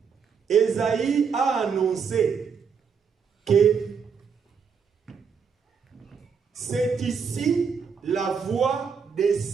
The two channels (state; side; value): quieter; left; 6.2 dB